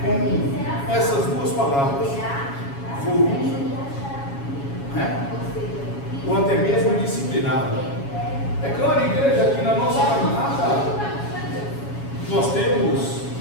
com essas duas palavras, volúvel, né, ou até mesmo disciplinado. É claro, igreja, que na nossa caminhada nós temos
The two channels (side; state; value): right; late; 7.2 ms